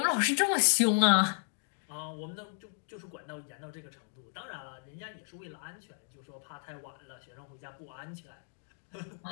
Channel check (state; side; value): silent; right; digital silence